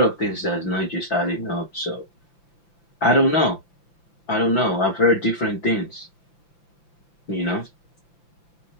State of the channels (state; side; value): late; right; 5.9 ms